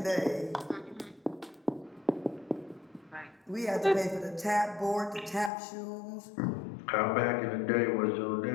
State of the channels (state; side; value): drops out; right; at 5.5 s